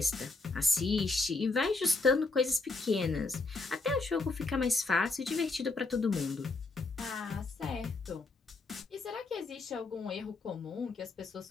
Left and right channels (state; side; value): quieter; right; 3.6 dB